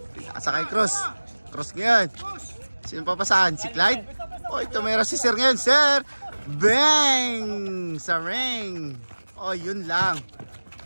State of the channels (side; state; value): both; inverted; correlation -1.00